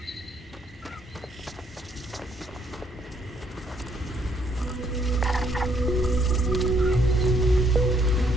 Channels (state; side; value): normal; both; correlation 0.69